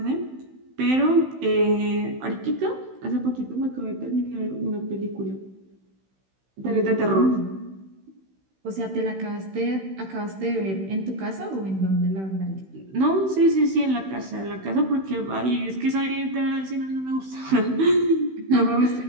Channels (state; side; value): late; left; 16 ms